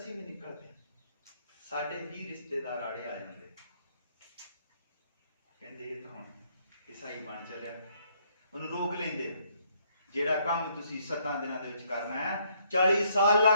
ਵੀ ਨਿਕਲਦੇ ਸਾਡੇ ਵੀ ਰਿਸ਼ਤੇਦਾਰ ਆੜੇ ਆ ਜਾਂਦੇ, ਕਹਿੰਦੇ ਇਹ ਤਾਂ ਹੁਣ ਈਸਾਈ ਬਣ ਚੱਲਿਆ, ਉਹਨੂੰ ਰੋਕ ਲੈਂਦੇ। ਜਿਹੜਾ ਕੰਮ ਤੁਸੀਂ 7 ਦਿਨਾਂ ਦੇ ਵਿੱਚ ਕਰਨਾ ਹੈ 40 ਸਾਲ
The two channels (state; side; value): inverted; both; correlation -0.68